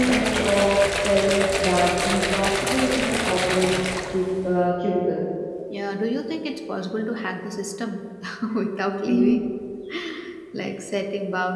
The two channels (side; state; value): both; identical; correlation 1.00